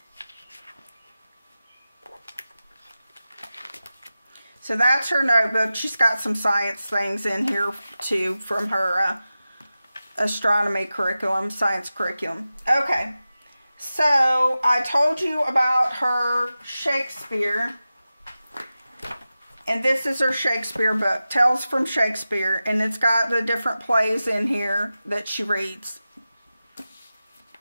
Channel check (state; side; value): inverted; both; correlation -0.94